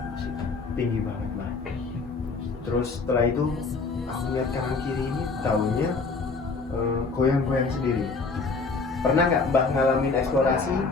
Tinggi banget, Pak. Terus setelah itu aku lihat kanan kiri ini daunnya goyang-goyang sendiri. Pernah nggak Mbak ngalamin eksplorasi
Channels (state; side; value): quieter; right; 4.2 dB